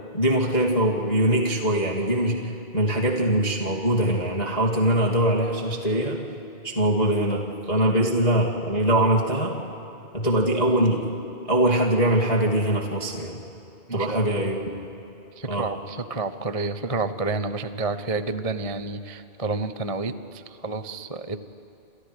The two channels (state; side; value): late; right; 1.9 ms